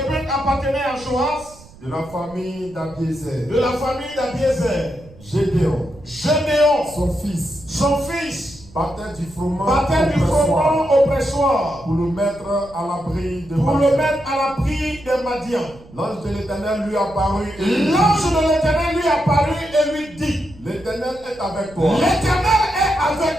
appartenait à Joas, de la famille d'Abiézer. de la famille d'Abiézer. Gédéon, Gédéon, son fils, battait du froment au pressoir pour le mettre à l'abri de Madian. L'ange de l'Éternel lui apparut et lui dit, l'Éternel est avec toi. l'Éternel est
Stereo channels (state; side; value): noise; right; rumble, 22 dB below the sound